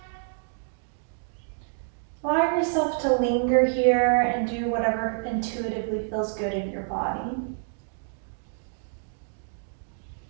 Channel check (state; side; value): silent; left; digital silence